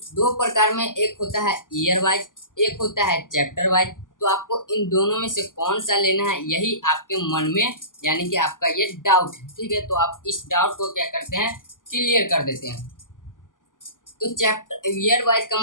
दो प्रकार में एक होता है ईयर वाइज, एक होता है चैप्टर वाइज। तो आपको इन दोनों में से कौन सा लेना है, यही आपके मन में यानी कि आपका ये डाउट है। ठीक है, तो आप इस डाउट को क्या करते हैं, क्लियर कर देते हैं। तो चैप्टर ईयर वाइज का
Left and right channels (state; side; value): late; right; 0.88 ms